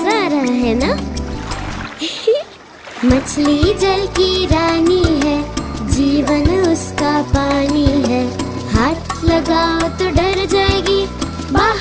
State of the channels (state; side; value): identical; both; correlation 1.00